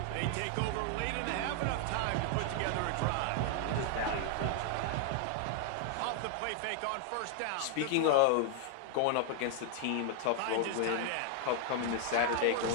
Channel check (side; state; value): both; different; correlation 0.00